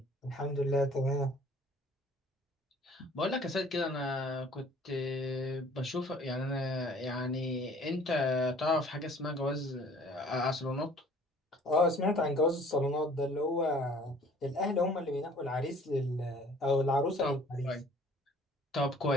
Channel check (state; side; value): normal; both; correlation 0.53